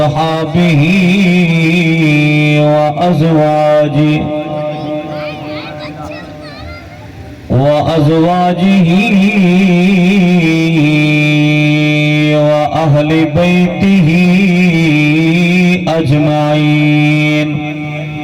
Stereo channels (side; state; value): both; identical; correlation 1.00